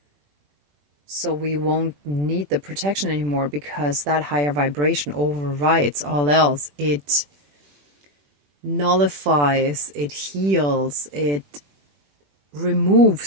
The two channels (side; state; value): left; late; 21 ms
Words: So we won't need the protection anymore, because that higher vibration overrides all else. It nullifies, it heals, it